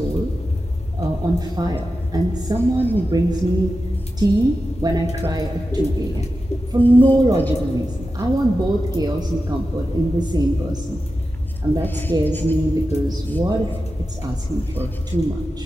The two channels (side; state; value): both; normal; correlation 0.92